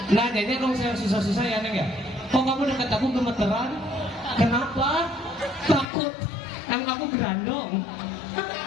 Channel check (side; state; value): right; drops out; at 5.9 s